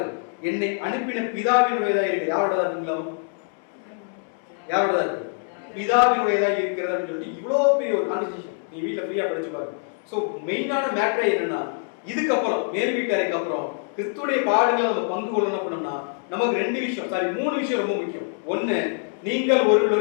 என்னை அனுப்பின பிதாவினுடையதா இருக்கு. யாரோடதா இருக்குங்களா? யாரோடதா இருக்கு? பிதாவினுடையதா இருக்கிறது அப்படின்னு சொல்லிட்டு இவ்வளவு பெரிய ஒரு கான்வர்சேஷன் நீ வீட்டுல ஃப்ரீயா படிச்சு பாரு. சோ மெயினான மேட்டரே என்னன்னா, இதுக்கப்புறம் மேல் வீட்டறைக்கு அப்புறம் கிறிஸ்துடைய பாடுகளை நம்ம பங்கு கொள்ளணும் அப்படின்னா நமக்கு 2 விஷயம், 3 விஷயம் ரொம்ப முக்கியம். ஒண்ணு, நீங்கள்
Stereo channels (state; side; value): silent; right; 56 dB below the other